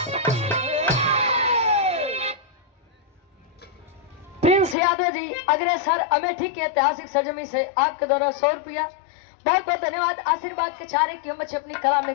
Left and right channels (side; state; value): right; drops out; at 4.8 s